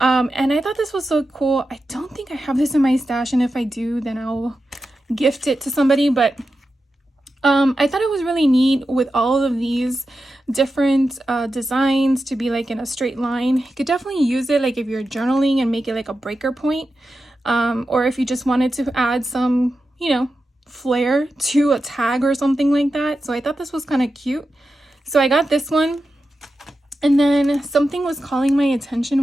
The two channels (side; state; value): both; normal; correlation 0.91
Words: I thought this was so cool. I don't think I have this in my stash, and if I do, then I'll gift it to somebody. But I thought it was really neat with all of these different designs to be like in a straight line. You could definitely use it like if you're journaling and make it like a breaker point, or if you just wanted to add some, you know, flair to a tag or something like that. So I thought this was kind of cute. So I got this one, and then something was calling my